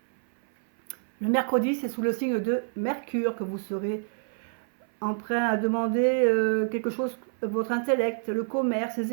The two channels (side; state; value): left; silent; 60 dB below the other